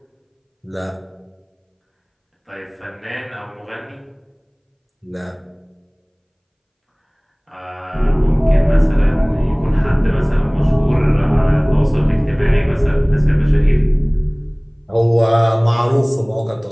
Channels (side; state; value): both; identical; correlation 1.00